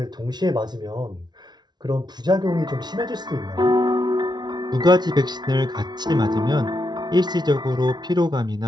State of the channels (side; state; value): left; late; 0.20 ms